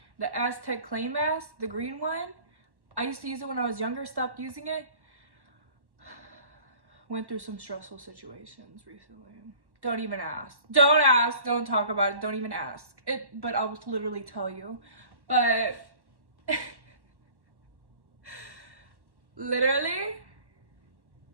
The Aztec Clay Mask, the green one. I used to use it when I was younger, stopped using it. Went through some stressful situations recently. Don't even ask. Don't ask. Don't talk about it. Don't even ask. But I'll literally tell you. But literally,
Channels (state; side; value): late; left; 1.1 ms